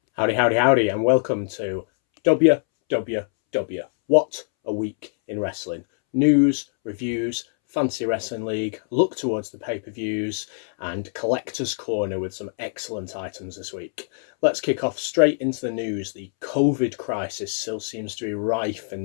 Howdy, howdy, howdy, and welcome to WWW. What a week in wrestling. News, reviews, Fantasy Wrestling League, look towards the pay-per-views, and Collector's Corner with some excellent items this week. Let's kick off straight into the news. The COVID crisis still seems to be rife in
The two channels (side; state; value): right; silent; 63 dB below the other